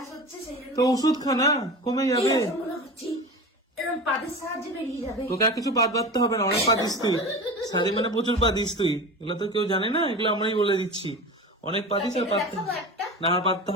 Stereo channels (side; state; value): both; normal; correlation 0.30